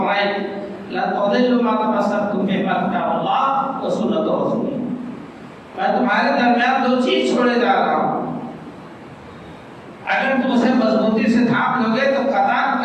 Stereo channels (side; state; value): both; identical; correlation 1.00